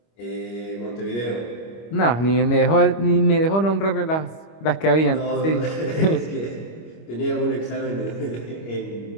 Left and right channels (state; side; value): late; right; 25 ms